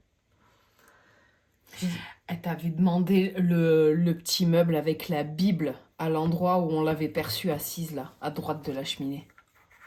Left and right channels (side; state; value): both; identical; correlation 1.00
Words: Elle t'avait demandé le petit meuble avec la Bible à l'endroit où on l'avait perçue assise, là, à droite de la cheminée.